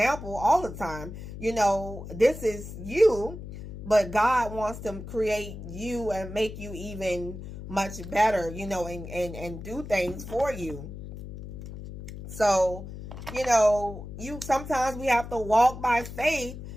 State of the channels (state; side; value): noise; left; hum, 11 dB below the sound